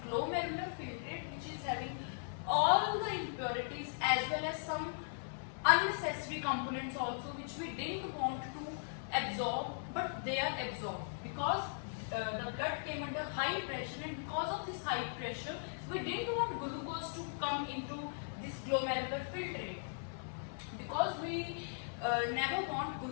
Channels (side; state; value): right; silent; 52 dB below the other